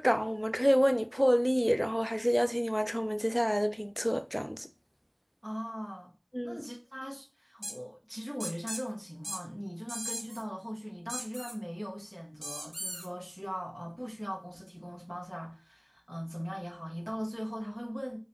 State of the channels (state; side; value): identical; both; correlation 1.00